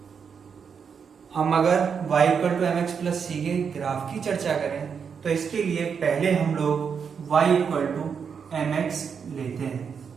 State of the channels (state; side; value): quieter; left; 6.5 dB